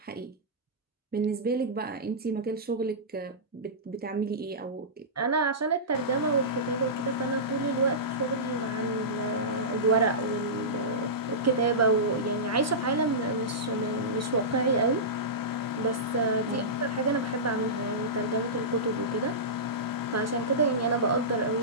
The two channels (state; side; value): normal; both; correlation -0.17